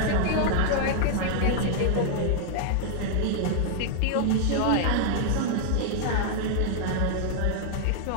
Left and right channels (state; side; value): different; both; correlation -0.01